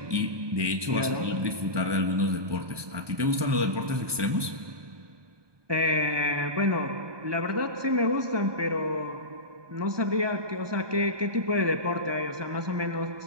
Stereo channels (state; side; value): late; left; 1.2 ms